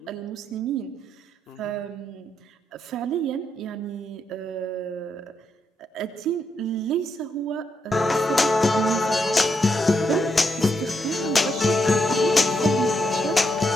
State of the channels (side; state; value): both; normal; correlation 0.80